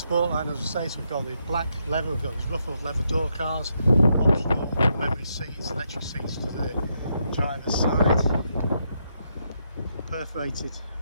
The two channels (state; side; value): inverted; both; correlation -0.79